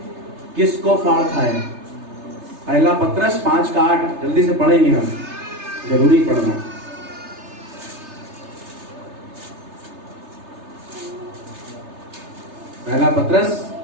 किसको फाड़ खाए। पहला पत्रस 5:8 जल्दी से पढ़ेंगे हम, जरूरी पढ़ना। पहला पत्रस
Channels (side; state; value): left; late; 3.3 ms